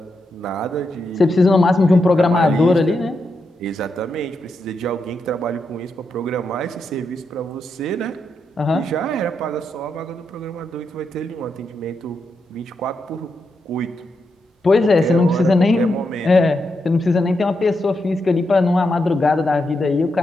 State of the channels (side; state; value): both; normal; correlation 0.84